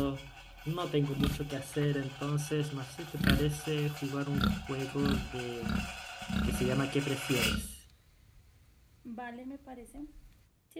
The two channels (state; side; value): identical; both; correlation 1.00